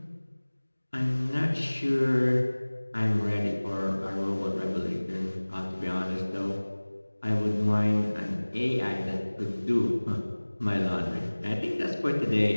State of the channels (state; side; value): inverted; both; correlation -1.00